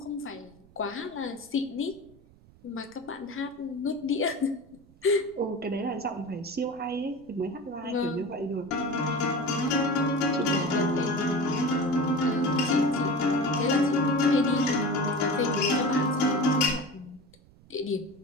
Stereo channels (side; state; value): right; noise; rumble, 26 dB below the sound